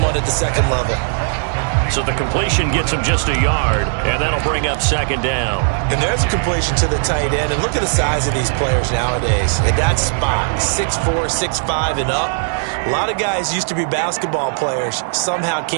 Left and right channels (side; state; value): left; silent; digital silence